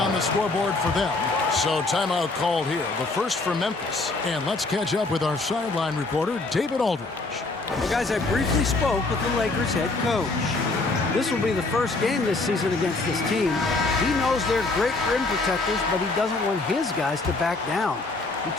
the scoreboard for them. So timeout called here. The first for Memphis. And let's catch up with our sideline reporter, David Aldridge. Well, guys, I briefly spoke with the Lakers head coach. This will be the first game this season against this team. He knows they're great rim protectors, but he doesn't want his guys to back down. He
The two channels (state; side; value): quieter; right; 3.4 dB